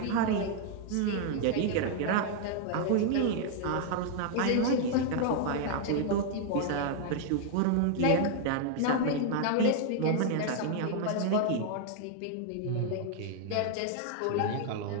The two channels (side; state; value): both; different; correlation 0.00